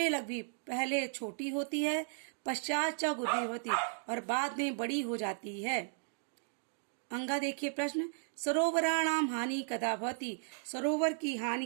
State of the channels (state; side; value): silent; left; digital silence